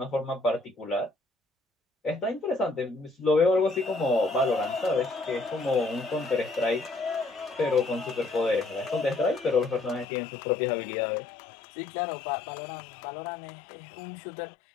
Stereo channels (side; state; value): right; drops out; at 10.1 s